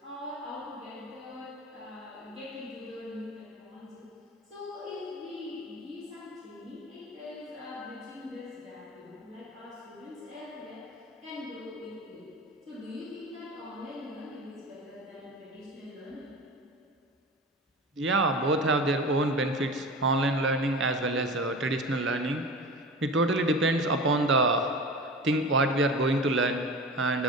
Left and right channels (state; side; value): normal; both; correlation 0.33